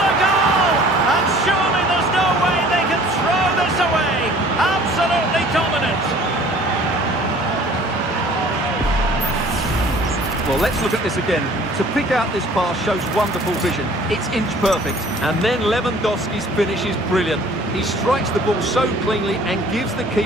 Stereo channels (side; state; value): both; normal; correlation 0.51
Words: goal! And surely there's no way they can throw this away. Absolutely dominant. Well, let's look at this again. To pick out this pass shows wonderful vision. It's inch perfect. And then Lewandowski's finish is brilliant. He strikes the ball so cleanly and gives the